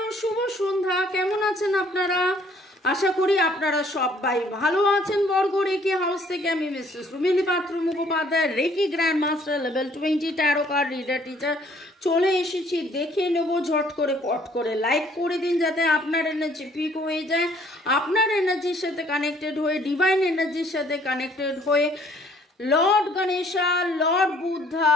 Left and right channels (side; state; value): both; normal; correlation 0.61